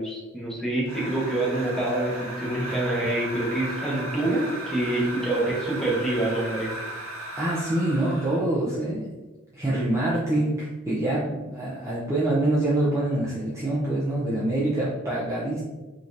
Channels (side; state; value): both; normal; correlation 0.61